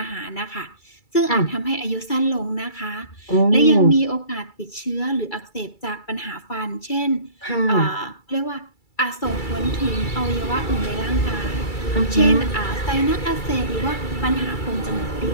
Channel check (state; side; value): late; right; 2.3 ms